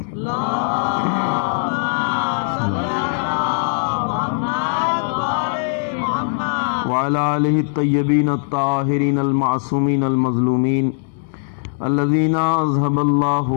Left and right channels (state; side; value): silent; right; digital silence